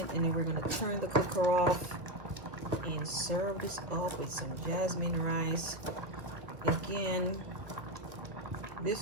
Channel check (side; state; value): left; late; 1.2 ms